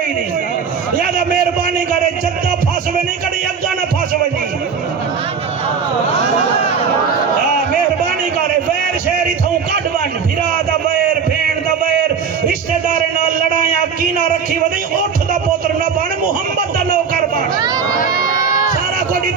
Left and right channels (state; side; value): quieter; left; 6.2 dB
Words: نہیں لہذا مہربانی کرے جدہ پھاسوے نہیں کنے اگا نہ پھاسوے نہیں مہربانی کرے ویر شہری تھوں کڈ ون بھرا دا ویر بھین دا ویر رشتہ دارے نال لڑائیاں کینا رکھی ودی اٹھ دا پوتر نہ بن محمد دا نوکر بن سارا کوئی